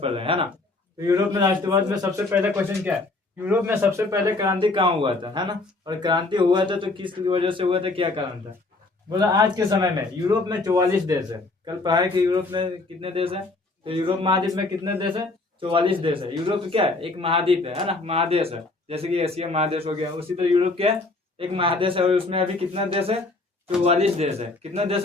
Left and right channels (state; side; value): quieter; right; 3.3 dB